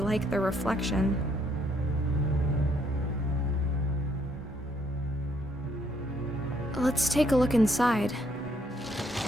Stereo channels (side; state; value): both; normal; correlation 0.70